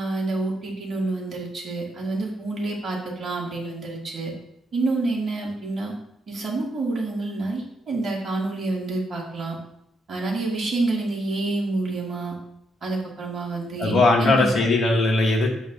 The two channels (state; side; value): normal; both; correlation 0.77